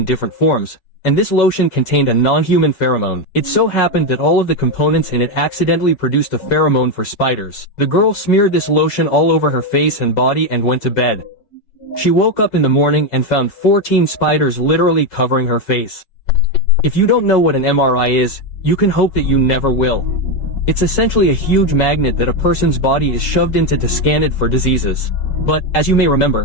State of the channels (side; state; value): right; late; 7.5 ms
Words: different forms, and this lotion contained a non-human pheromone. It so happened that all of the components in it accidentally produced a pheromone for spiders. The girl smeared this lotion all over her face and body and went to bed. She woke up in the morning and found 14 spiders literally covering her face. If you don't know what an MRI is, you can hope that you never will. It's essentially a huge magnet that a person's body is shoved into to scan it for diseases. But, as you may